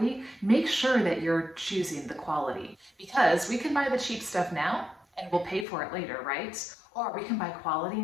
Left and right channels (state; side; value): drops out; right; at 5.7 s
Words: make sure that you're choosing the quality, because we can buy the cheap stuff now and we'll pay for it later, right? Or we can buy quality